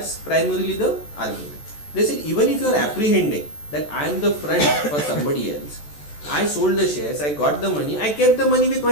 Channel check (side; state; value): right; late; 14 ms